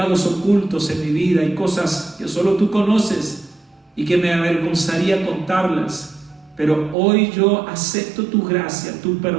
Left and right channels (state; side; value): drops out; left; at 7.0 s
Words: ocultos en mi vida, hay cosas que solo tú conoces y que me avergonzaría contarlas. Pero hoy yo acepto tu gracia, tu